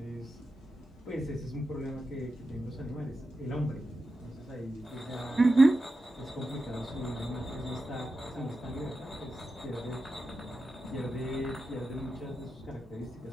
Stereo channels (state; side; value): normal; both; correlation 0.90